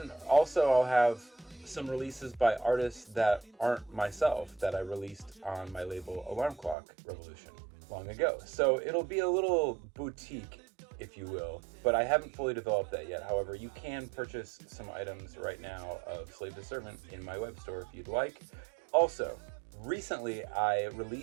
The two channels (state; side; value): drops out; left; at 6.8 s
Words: also I'll have some releases by artists that aren't myself that I released on my label Alarm Clock Revolution long ago. So it'll be a little boutique, if you will, but I haven't fully developed that yet. However, you can purchase some items right now of Slave to Servant in my web store if you'd like. Also, recently I